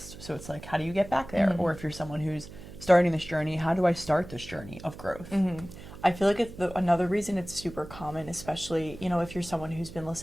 So it's how do you get back there? Mm-hmm. Or if you're someone who's starting this journey, how do I start this journey of growth? Mm-hmm. I feel like another reason it's super common, especially, if you're someone who's been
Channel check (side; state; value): right; noise; hum, 15 dB below the sound